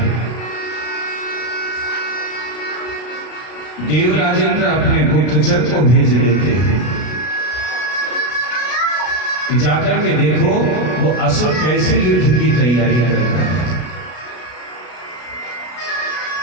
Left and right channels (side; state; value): right; late; 33 ms